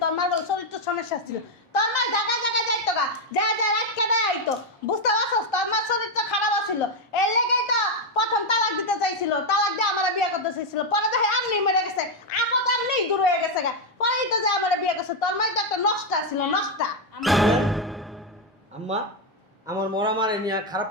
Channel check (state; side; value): normal; both; correlation 0.04